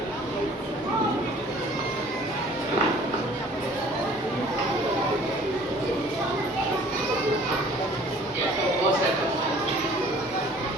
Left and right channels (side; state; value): both; normal; correlation 0.52